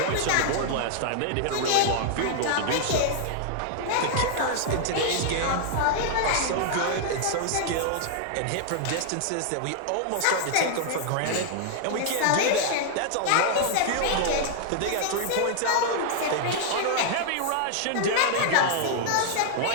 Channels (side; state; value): both; different; correlation -0.01